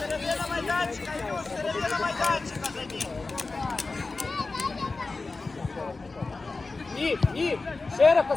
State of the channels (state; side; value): quieter; right; 3.7 dB